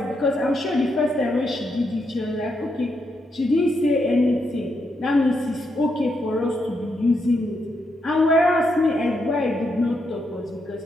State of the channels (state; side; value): normal; both; correlation 0.81